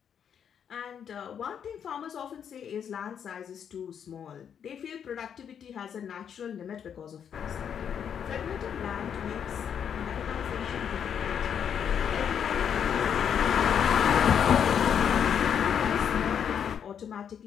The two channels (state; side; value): quieter; right; 8.1 dB